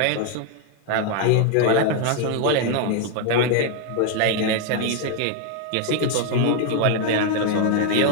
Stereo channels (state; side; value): different; both; correlation 0.01